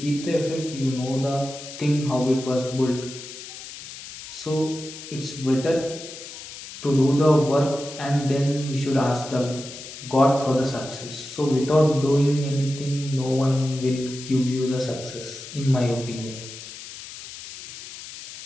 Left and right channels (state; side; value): noise; left; hiss, 13 dB below the sound